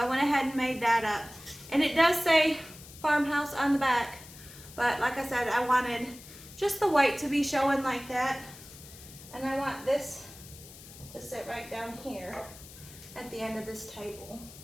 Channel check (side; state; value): left; noise; hiss, 18 dB below the sound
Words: went ahead and made that up. And it does say farmhouse on the back. But like I said, I wanted just the white to be showing like that. And I want this to sit right down here at the end of this table.